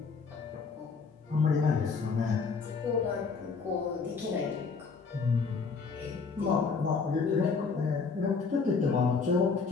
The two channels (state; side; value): quieter; right; 4.9 dB